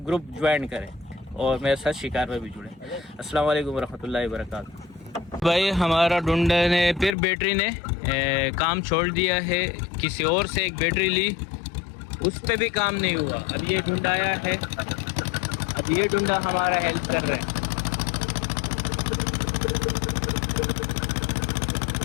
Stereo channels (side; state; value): right; drops out; at 7.2 s